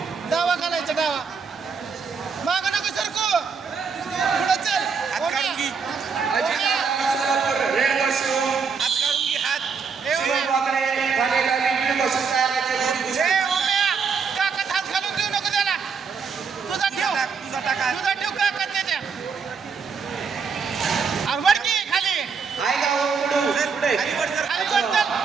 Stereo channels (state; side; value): quieter; left; 5.6 dB